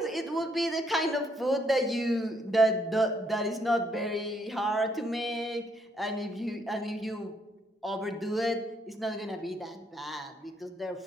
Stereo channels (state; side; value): normal; both; correlation 0.72